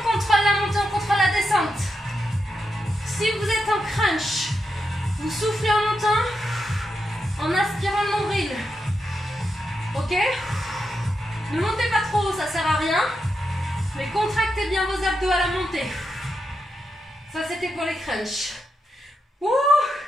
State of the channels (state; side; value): normal; both; correlation 0.86